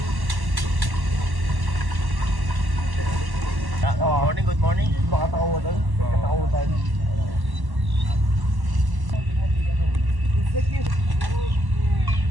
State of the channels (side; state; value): left; late; 1.1 ms